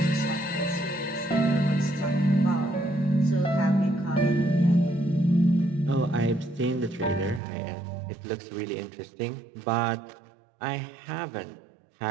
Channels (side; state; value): left; drops out; at 7.4 s